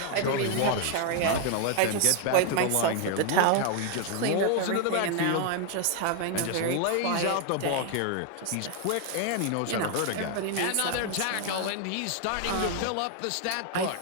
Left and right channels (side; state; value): both; different; correlation 0.00